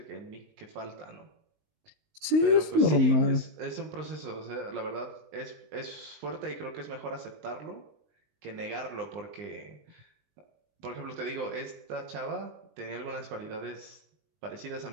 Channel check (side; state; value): left; late; 20 ms